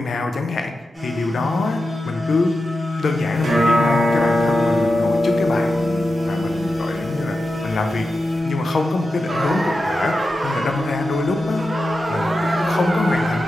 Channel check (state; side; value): normal; both; correlation 0.91